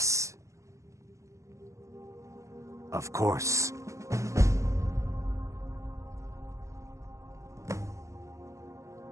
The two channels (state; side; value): late; left; 0.15 ms